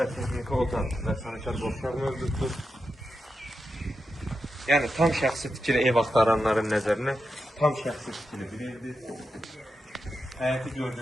texniki otaq və sanitar boşluq mövcuddur. Yəni tam şəxsi tikili ev axtaranların nəzərinə tam şəxsi tikili bir evdir. Həyəti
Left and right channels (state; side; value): normal; both; correlation 0.88